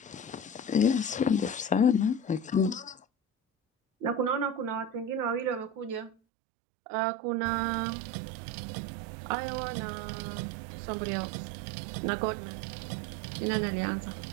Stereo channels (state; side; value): drops out; left; at 6.1 s